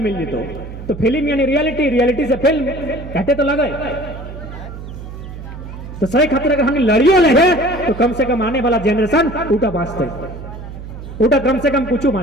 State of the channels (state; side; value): noise; right; hum, 12 dB below the sound